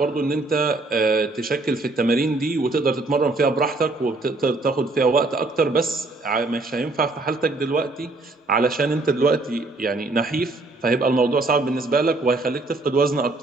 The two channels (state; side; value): quieter; left; 3.1 dB